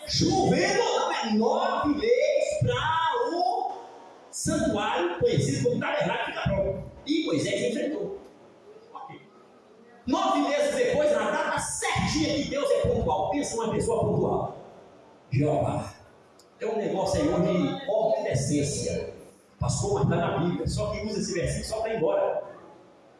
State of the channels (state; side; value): identical; both; correlation 1.00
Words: Chovendo não, é 9 meses para o santuário conhecido como tabernáculo ficar pronto. E Moisés enfrentou. 9 meses depois, na data certinha que Deus é pontual. Pensa uma pessoa pontual. Jeová. É um negócio aí onde ordem de essência. Pastor, mas está na Bíblia. Só que usa esse versículo só para ir embora.